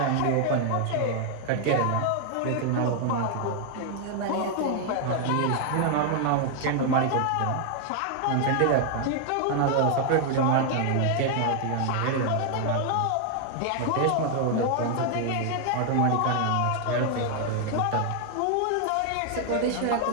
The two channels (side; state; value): both; different; correlation 0.00